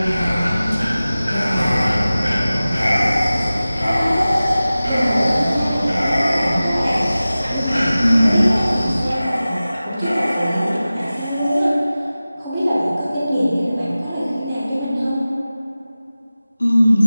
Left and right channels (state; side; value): inverted; both; correlation -0.96